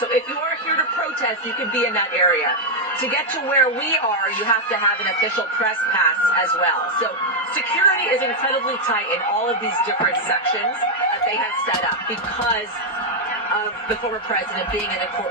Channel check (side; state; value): both; normal; correlation 0.00